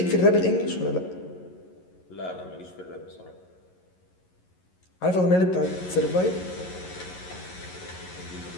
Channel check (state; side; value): late; right; 11 ms